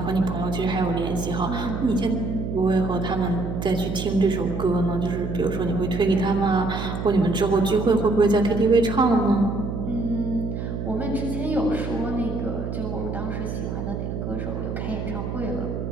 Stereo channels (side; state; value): right; noise; hum, 4 dB below the sound